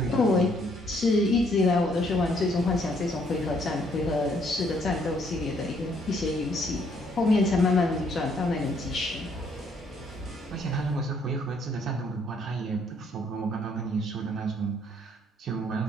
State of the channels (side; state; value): both; normal; correlation 0.67